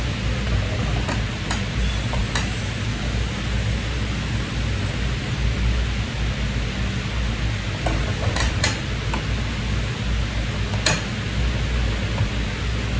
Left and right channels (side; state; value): both; identical; correlation 1.00